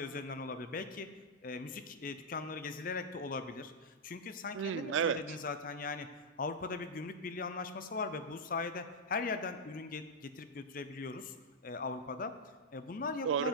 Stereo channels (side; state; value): both; normal; correlation -0.04